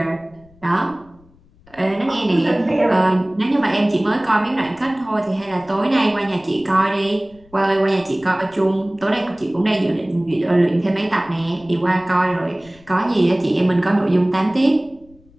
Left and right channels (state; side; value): noise; left; rumble, 29 dB below the sound